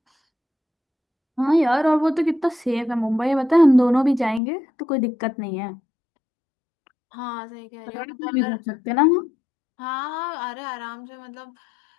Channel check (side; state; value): right; drops out; at 4.4 s